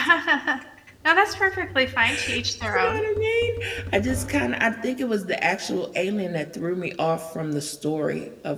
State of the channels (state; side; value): identical; both; correlation 1.00